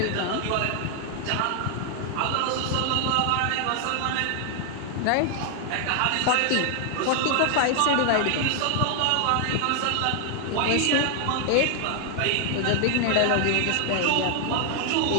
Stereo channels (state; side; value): different; both; correlation 0.00